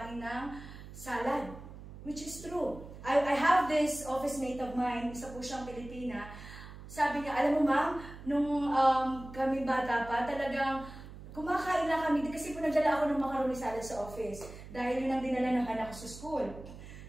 ng salad. Which is true. I have this office mate of mine, isa po siyang Pilipina. Sabi niya, alam mo ma'am, nung kami bata pa, talagang kumakain na kami. Kasi po nagdala ako ng macaroni salad sa office. Dahil yun ang dinala ng anak ko sa school.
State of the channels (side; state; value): right; noise; hum, 14 dB below the sound